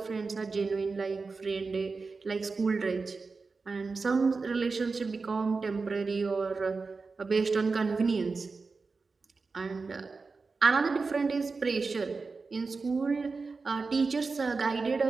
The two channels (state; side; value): quieter; left; 4.3 dB